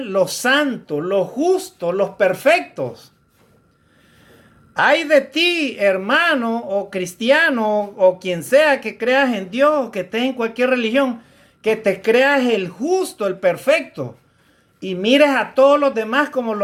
los santos, los justos, los perfectos. Ay de ti, hermano o cristiano o quien sea que creas en Dios, que estés en cualquier religión, que te creas el justo, el perfecto, y mires a todos los demás como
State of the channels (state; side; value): identical; both; correlation 1.00